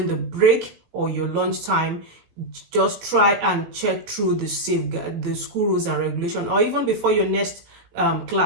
the break or your lunch time, just try and check through the school rules and regulation, or even before your next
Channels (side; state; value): left; late; 18 ms